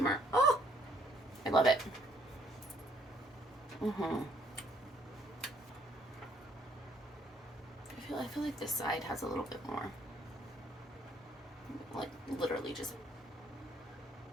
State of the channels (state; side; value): normal; both; correlation 0.66